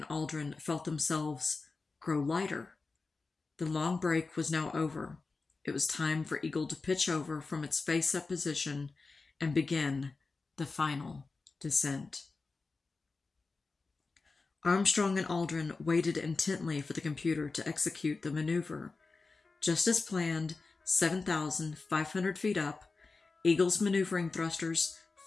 Aldrin felt themselves grow lighter. The long break was now over. It was time for Eagle to pitch over from its face-up position and begin the final descent. Armstrong and Aldrin waited intently for the computer to execute the maneuver. Just as planned, 7,500 feet up, Eagle's maneuvering thrusters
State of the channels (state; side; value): quieter; right; 4.0 dB